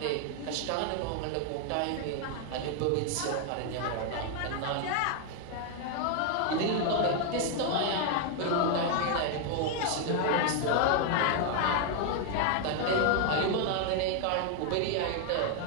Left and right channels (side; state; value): both; different; correlation 0.00